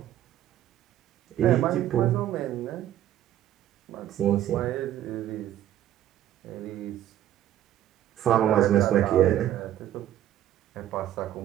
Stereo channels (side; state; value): left; quieter; 12.1 dB